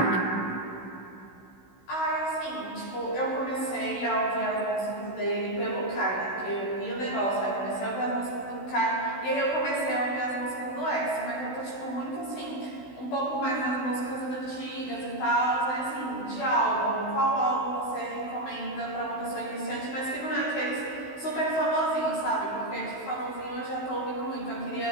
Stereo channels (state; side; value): late; right; 16 ms